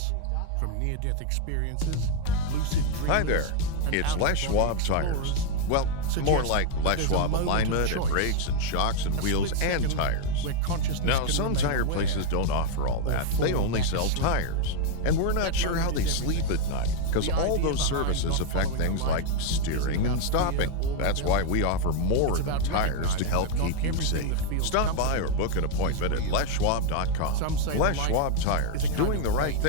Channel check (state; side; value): different; both; correlation 0.01